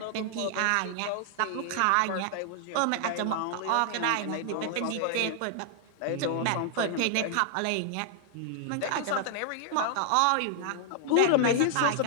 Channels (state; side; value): different; both; correlation -0.01